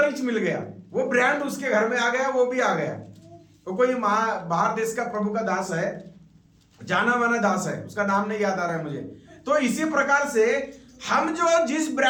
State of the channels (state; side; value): identical; both; correlation 1.00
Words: ही मिल गया। वो ब्रांड उसके घर में आ गया, वो भी आ गया। तो कोई बाहर देश का प्रभु का दास है, जाना माना दास है, उसका नाम नहीं याद आ रहा है मुझे। तो इसी प्रकार से हम जो जिस